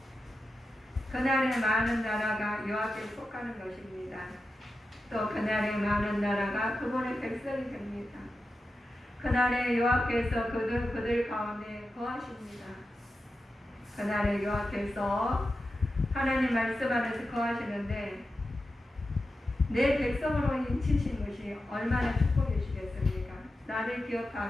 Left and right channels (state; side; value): normal; both; correlation 0.91